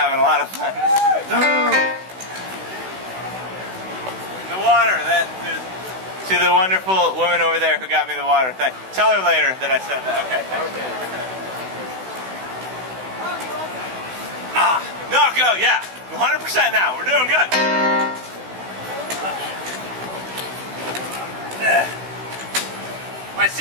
a lot of fun. The water, to the wonderful woman over there who got me the water. Tell her later that I said that. Okay. No, go, yeah. 100% now. We're doing good. My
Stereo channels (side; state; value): left; late; 16 ms